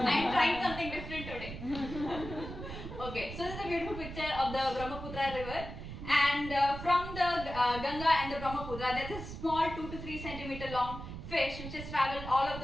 trying something different today. Okay, so this is a beautiful picture of the Brahmaputra river, and from the Ganga and the Brahmaputra, there's a small 2 to 3 centimeter long fish which has traveled all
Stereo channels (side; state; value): right; noise; rumble, 9 dB below the sound